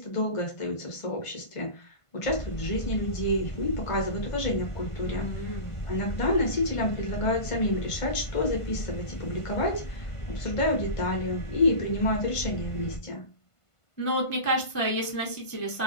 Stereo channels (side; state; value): right; late; 1.5 ms